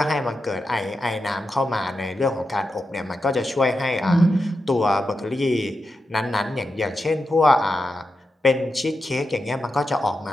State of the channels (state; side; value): normal; both; correlation 0.88